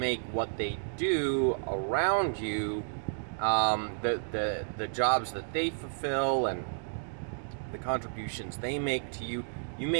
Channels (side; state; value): left; silent; digital silence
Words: what they do around you, the jobs that they fulfill and the contributions they make to you. You